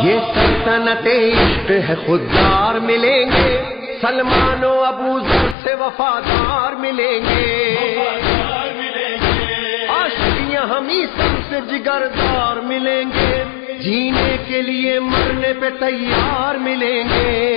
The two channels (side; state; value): right; drops out; at 5.6 s